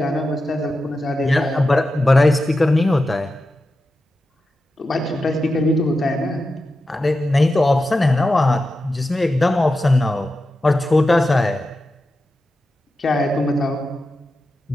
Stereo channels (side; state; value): both; normal; correlation 0.91